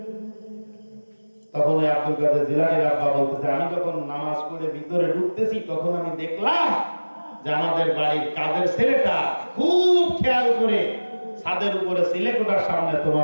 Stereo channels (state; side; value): inverted; both; correlation -1.00